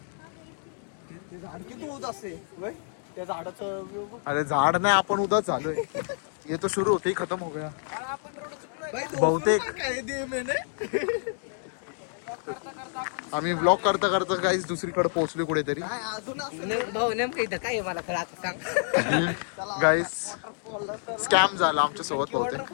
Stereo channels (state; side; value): silent; right; digital silence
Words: झाड किती होत असते त्या झाडाचं अरे झाड नाही आपण उदाच झालोय ये तो शुरू होते ही खत्म हो गया आपण रोड चुकलोय बहुतेक आम्ही ब्लॉग करता करता काहीच दुसरीकडे पोहोचलो कुठेतरी. भाऊ नेमकं इथं काय आहे मला खरं आता सांग. गाईस स्कॅम झाला आमच्या सोबत बहुतेक.